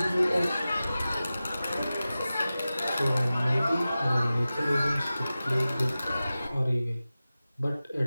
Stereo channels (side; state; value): both; inverted; correlation -0.95